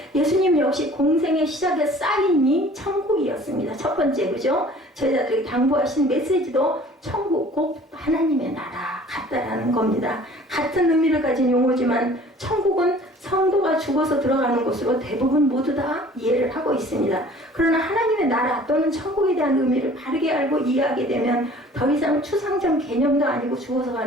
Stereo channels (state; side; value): normal; both; correlation 0.49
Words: 예수님 역시 공생의 시작의 사인이 천국이었습니다. 첫 번째, 그죠? 제자들에게 당부하신 메시지도 천국 곧 하나님의 나라 같다라는 겁니다. 같은 의미를 가진 용어지만 천국은 성도가 죽어서 들어가는 곳으로 대부분 모두 다 이해를 하고 있습니다. 그러나 하나님의 나라 또는 천국에 대한 의미를 바르게 알고 이해하게 되면 더 이상 추상적 개념도 아니고 죽어서